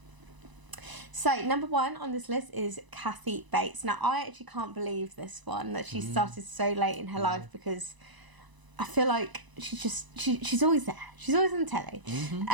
So, number one on this list is Kathy Bates. Now, I actually can't believe this one, that she started so late in her life, because I feel like she's always there. She's always on telly.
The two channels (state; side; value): late; left; 1.0 ms